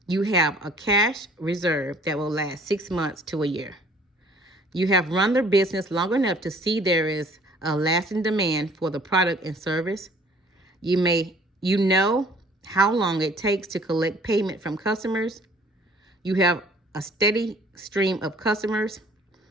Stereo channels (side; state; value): both; normal; correlation 0.55